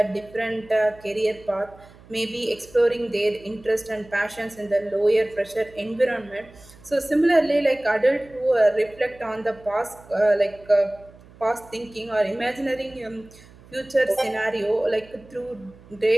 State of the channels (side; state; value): right; noise; hum, 23 dB below the sound